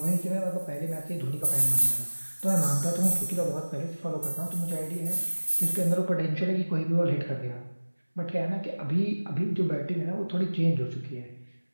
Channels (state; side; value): inverted; both; correlation -1.00